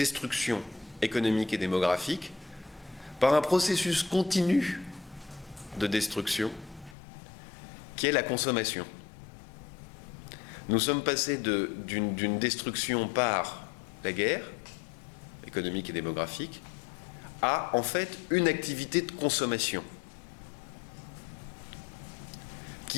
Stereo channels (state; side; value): drops out; right; at 7.0 s